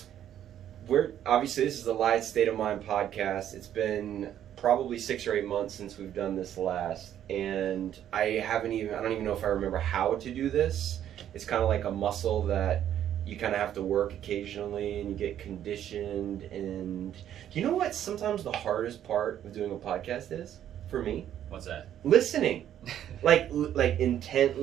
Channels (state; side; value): quieter; left; 10.7 dB